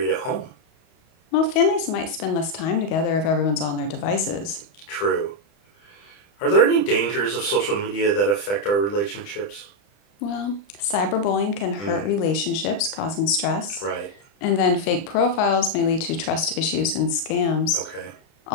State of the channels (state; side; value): late; right; 30 ms